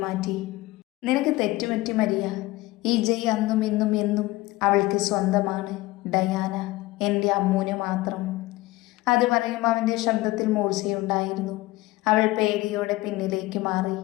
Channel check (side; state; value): right; quieter; 19.4 dB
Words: മാറ്റി. നിനക്ക് തെറ്റുപറ്റി മരിയ. ഈ ജയ് അന്നും ഇന്നും എന്നും അവൾക്ക് സ്വന്തമാണ്. ഡയാന എൻ്റെ അമ്മൂന് മാത്രം. അത് പറയുമ്പോൾ അവൻ്റെ ശബ്ദത്തിൽ മൂർച്ചയുണ്ടായിരുന്നു. അവൾ പേടിയോടെ പിന്നിലേക്ക് മാറി.